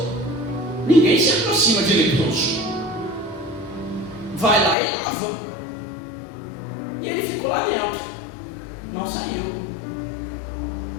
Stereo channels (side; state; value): right; drops out; at 4.8 s